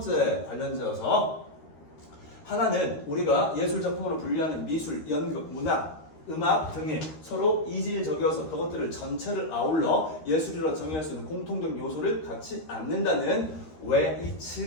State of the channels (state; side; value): late; right; 13 ms